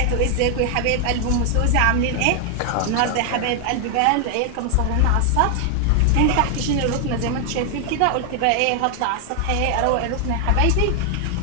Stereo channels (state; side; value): different; both; correlation 0.00